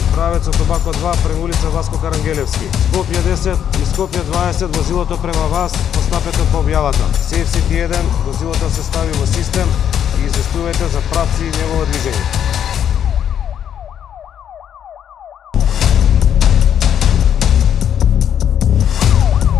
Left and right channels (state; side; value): quieter; right; 9.2 dB